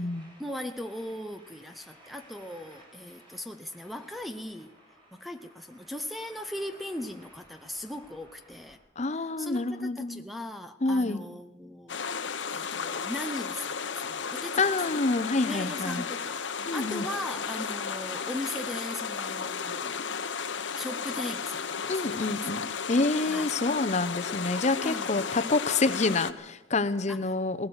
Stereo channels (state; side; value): quieter; right; 3.1 dB